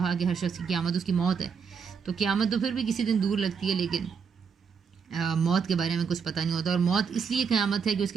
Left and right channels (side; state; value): left; quieter; 6.2 dB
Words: کہ ہر شخص کی قیامت اس کی موت ہے. تو قیامت تو پھر بھی کسی دن دور لگتی ہے، لیکن موت کے بارے میں کچھ پتہ نہیں ہوتا. اور موت اس لیے قیامت ہے کہ اس